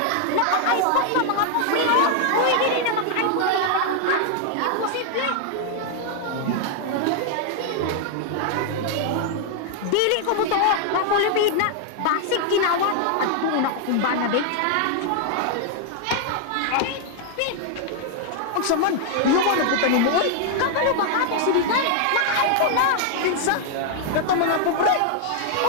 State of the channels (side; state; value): both; different; correlation 0.00